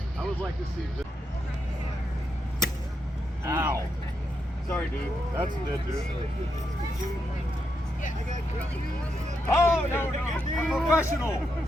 I would like to see this. Ow. Sorry, dude. That's a dead dude. Oh, no. A professional.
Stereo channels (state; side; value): normal; both; correlation 0.82